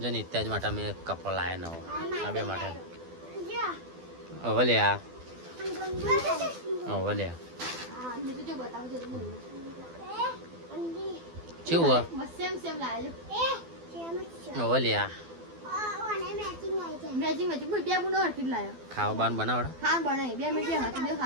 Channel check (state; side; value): late; left; 12 ms